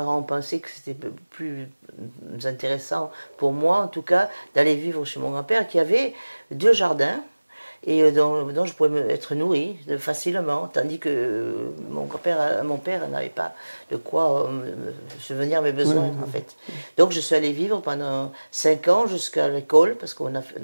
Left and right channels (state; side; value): inverted; both; correlation -1.00